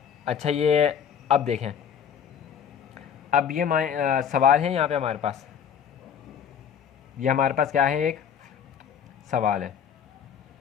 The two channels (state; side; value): quieter; right; 8.0 dB